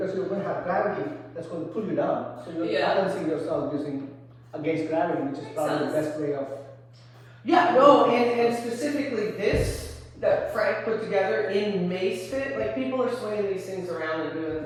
you're going to have gravity, that's going to pull you down. So you're balancing yourself using against gravity, which is probably the best way of. Yeah, no, and specifically this that Frank put together in Mace Fit, like people are swinging these things around and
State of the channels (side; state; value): both; identical; correlation 1.00